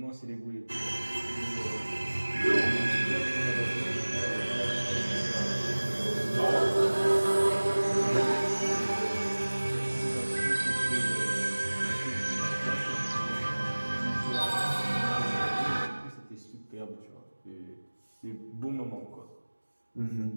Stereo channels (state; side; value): inverted; both; correlation -1.00